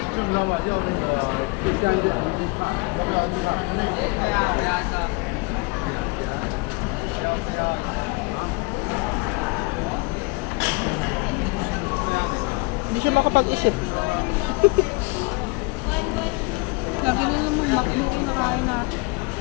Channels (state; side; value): quieter; right; 27.3 dB